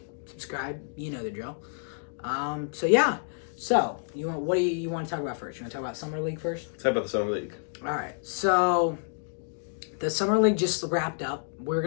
subscribe, you know the drill. So what do you want to talk about first? You want to talk about Summer League first? Talk about the Summer League. All right, so the Summer League just wrapped up. We're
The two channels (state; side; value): silent; right; digital silence